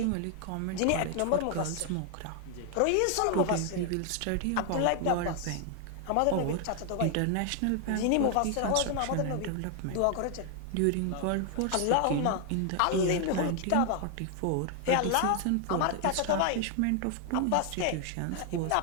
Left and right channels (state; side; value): different; both; correlation 0.00